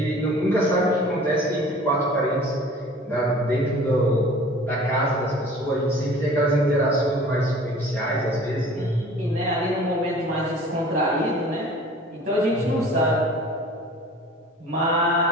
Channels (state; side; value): normal; both; correlation 0.46